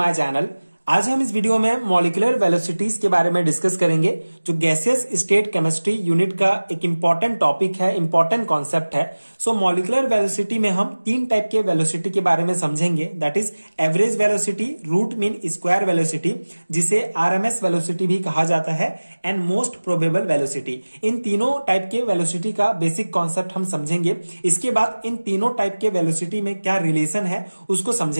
channel. आज हम इस वीडियो में मॉलिक्यूलर वेलोसिटीज के बारे में डिस्कस करेंगे, जो गैसियस स्टेट केमिस्ट्री यूनिट का एक इंपॉर्टेंट टॉपिक है, इंपॉर्टेंट कॉन्सेप्ट है। सो मॉलिक्यूलर वेलोसिटी में हम तीन टाइप के वेलोसिटी के बारे में समझेंगे, that is average velocity, root mean square velocity, जिसे आरएमएस वेलोसिटी भी कहा जाता है, एंड मोस्ट प्रोबेबल वेलोसिटी। इन तीनों टाइप के वेलोसिटी का बेसिक कॉन्सेप्ट हम समझेंगे। इसके बाद इन तीनों टाइप के वेलोसिटी में क्या रिलेशन है उसको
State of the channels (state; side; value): inverted; both; correlation -1.00